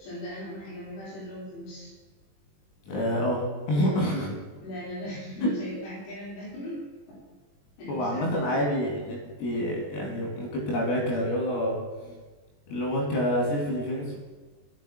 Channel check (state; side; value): late; right; 21 ms